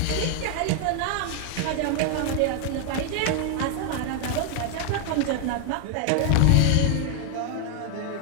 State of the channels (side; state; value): both; different; correlation 0.00